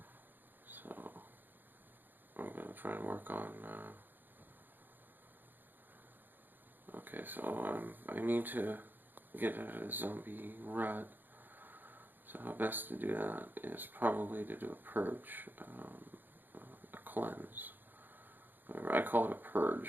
So I'm going to try and work on. Okay, so I need to get out of the zombie rut. So how best to do that is probably to do a purge, a cleanse. I call it a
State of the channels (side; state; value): left; late; 0.091 ms